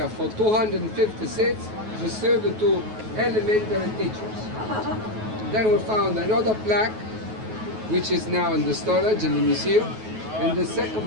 for 250 seats reserved to elementary teachers. Then we found another plaque, which is now in the storage in the museum, and the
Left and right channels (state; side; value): late; left; 9.3 ms